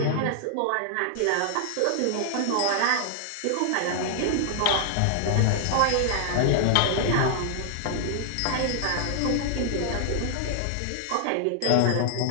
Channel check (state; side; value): different; both; correlation 0.00